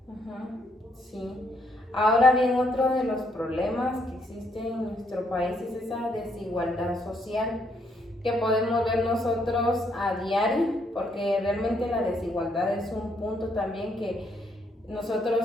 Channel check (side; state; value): both; normal; correlation 0.72